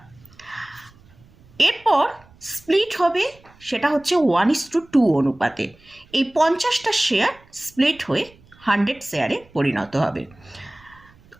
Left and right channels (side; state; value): right; noise; rumble, 27 dB below the sound